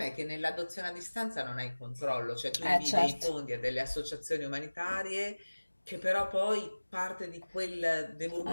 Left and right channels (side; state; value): both; inverted; correlation -1.00